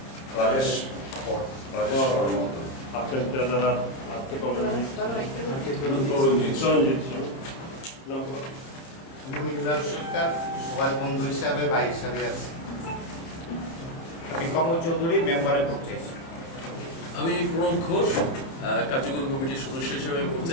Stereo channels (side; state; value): right; late; 30 ms